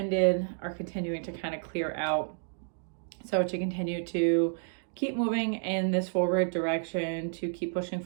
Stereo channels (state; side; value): silent; left; digital silence